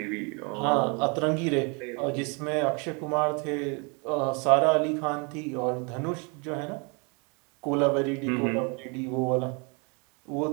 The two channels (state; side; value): quieter; left; 33.0 dB